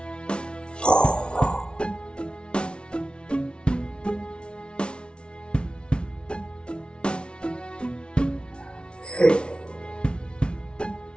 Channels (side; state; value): right; late; 0.057 ms